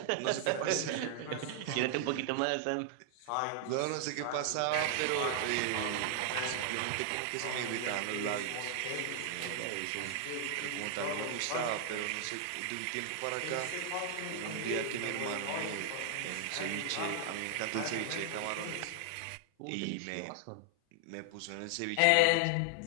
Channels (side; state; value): both; different; correlation 0.00